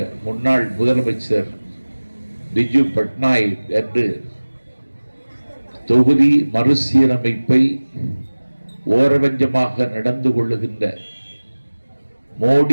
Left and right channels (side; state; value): both; inverted; correlation -1.00